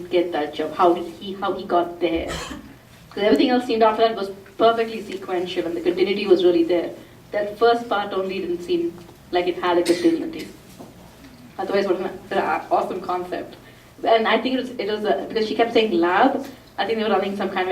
get that jump. How he got there? Because everything else seemed after that was perfectly sequential, and the continuity was really there. That first part only didn't seem like it had a continuity. Otherwise, what an awesome concept. And I think it was because she kept saying lab, I think they were running some kind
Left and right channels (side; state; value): both; identical; correlation 1.00